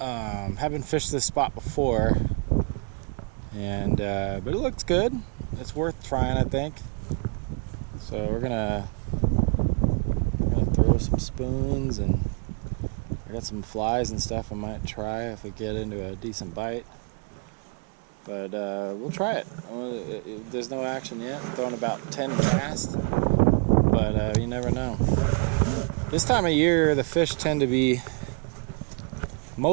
fished this spot before, and but it looks good. It's worth trying, I think. So we're gonna throw some spoons, and I got some flies and stuff I might try if we get into a decent bite. But we'll try it. There's no action yet. I'm throwing about 10 casts, but you never know. This time of year, the fish tend to be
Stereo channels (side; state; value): left; quieter; 38.2 dB